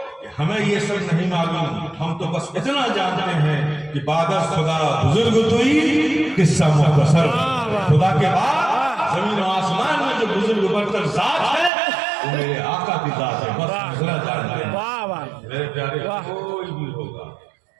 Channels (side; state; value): left; drops out; at 11.7 s